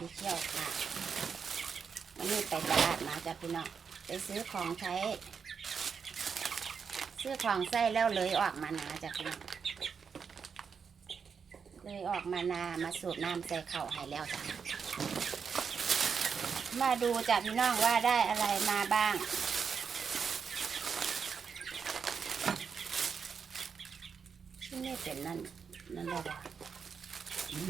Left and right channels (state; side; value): quieter; left; 6.2 dB